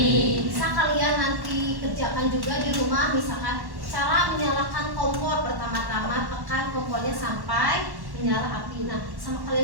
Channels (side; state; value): left; late; 1.1 ms